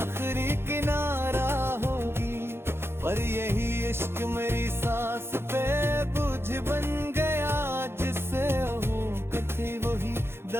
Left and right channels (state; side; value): late; left; 0.12 ms